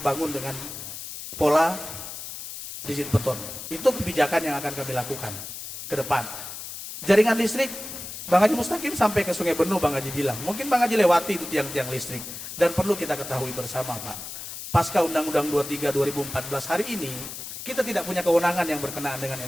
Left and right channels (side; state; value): left; noise; hiss, 9 dB below the sound